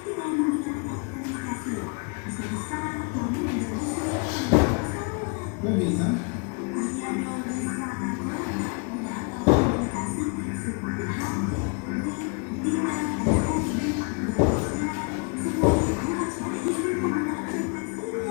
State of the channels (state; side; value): quieter; right; 35.6 dB